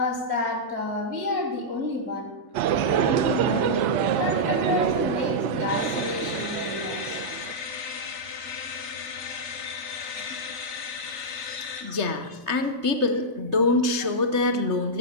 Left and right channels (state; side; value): late; left; 3.2 ms